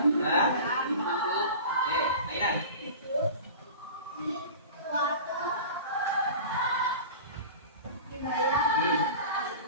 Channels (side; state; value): both; inverted; correlation -0.36